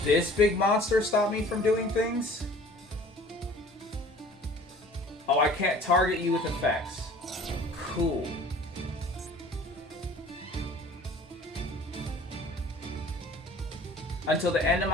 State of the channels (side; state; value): both; normal; correlation 0.48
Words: this big monster stop me from doing things? Oh, I can't target you with effects. Cool. Until the end of